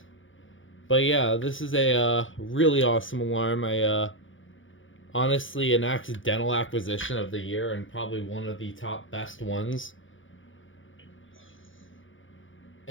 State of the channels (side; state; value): right; late; 0.57 ms